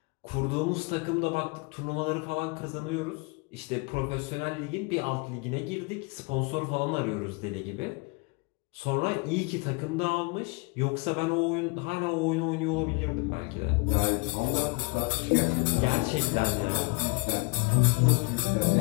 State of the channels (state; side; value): quieter; right; 30.2 dB